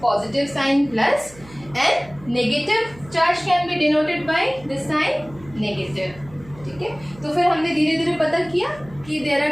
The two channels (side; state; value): right; noise; hum, 21 dB below the sound